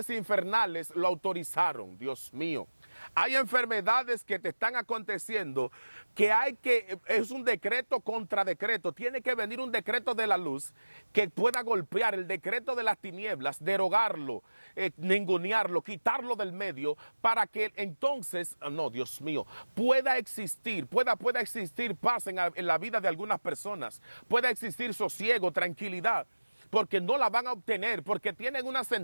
infernales lo autorizaron, Dios mío. Hay enfermedades que te están aconteciendo es un decreto contra decreto. Tiene que venir un decreto de la luz que pueda golpear el decreto de las tinieblas, derogarlo, ningunearlo, quitarlo del medio para que entonces, no, Dios mío, pueda existir paz en la vida de algunas personas, pueda existir sosiego, tranquilidad. Porque no la van a obtener, porque tienen una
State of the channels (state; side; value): inverted; both; correlation -1.00